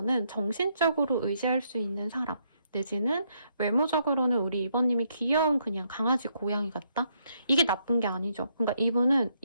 정신적으로 의지할 수 있는 사람 내지는 외모적으로는 우리 2번님이 귀여운 그냥 강아지 고양이 같다? 이게 나쁜 게 아니죠. 그러니까 이분은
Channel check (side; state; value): both; inverted; correlation -0.74